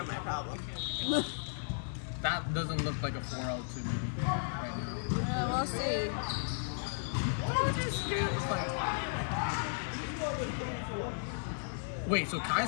my problem. That doesn't look like a 4-0 to me right now. We'll see. Wait, so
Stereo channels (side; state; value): right; silent; digital silence